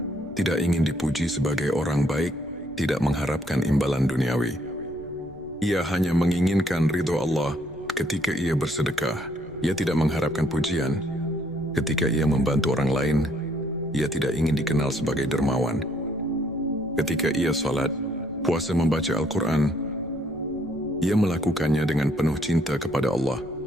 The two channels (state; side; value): noise; left; rumble, 21 dB below the sound